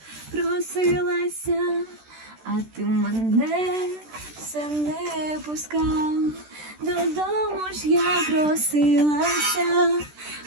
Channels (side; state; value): left; late; 13 ms